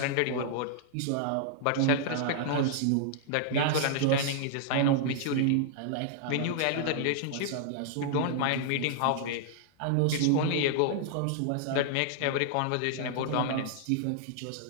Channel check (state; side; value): different; both; correlation -0.01